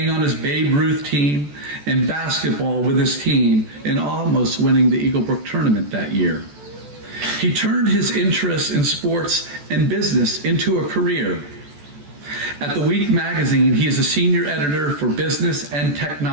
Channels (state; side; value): late; left; 14 ms